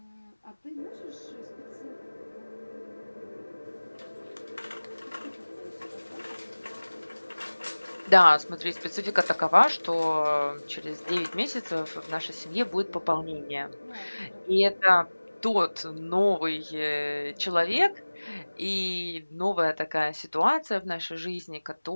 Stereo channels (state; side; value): inverted; both; correlation -1.00